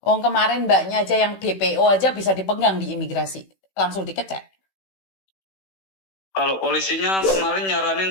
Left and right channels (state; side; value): late; right; 16 ms